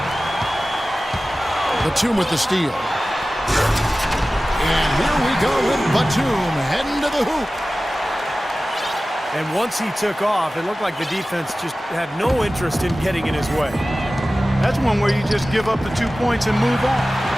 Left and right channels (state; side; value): normal; both; correlation 0.96